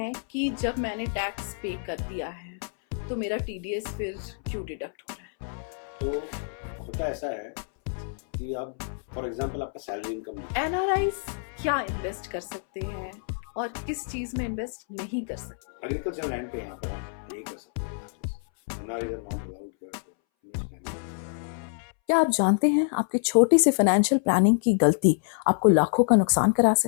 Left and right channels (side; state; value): right; silent; 60 dB below the other